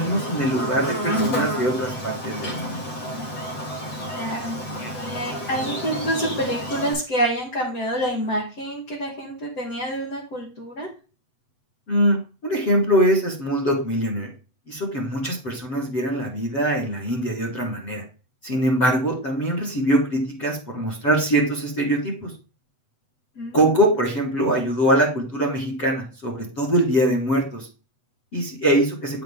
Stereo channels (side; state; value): right; late; 7.9 ms